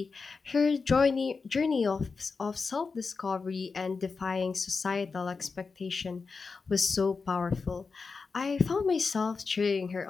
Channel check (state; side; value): quieter; right; 4.7 dB